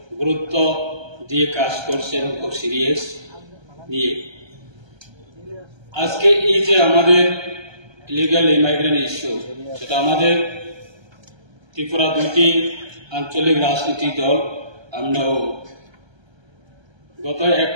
গুরুত্ব দিয়ে কাজ করছে এবং খুব সিরিয়াস নিয়ে। আজকে এই যে আমাদের ইলিগাল ইমাইগ্রেন্ট ইস্যু, সেটা আমাদের ত্রিপুরা দুইটি আঞ্চলিক রাজনৈতিক দল আমরাও গত 1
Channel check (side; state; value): left; late; 1.3 ms